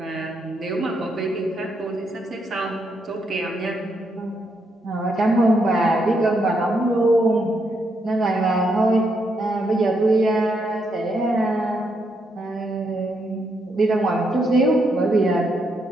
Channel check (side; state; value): both; normal; correlation 0.78